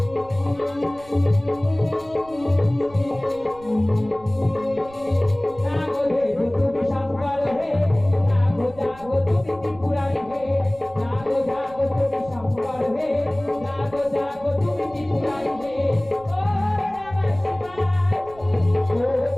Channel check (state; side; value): noise; right; rumble, 22 dB below the sound